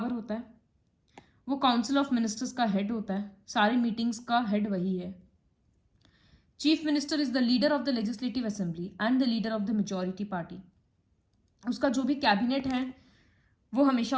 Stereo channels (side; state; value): both; identical; correlation 1.00